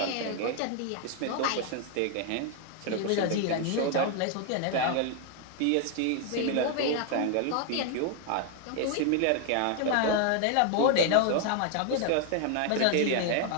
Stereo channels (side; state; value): both; different; correlation 0.00